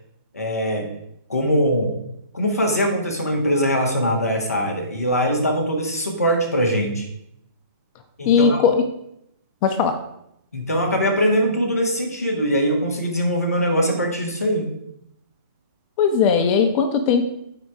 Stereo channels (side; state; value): both; inverted; correlation -0.42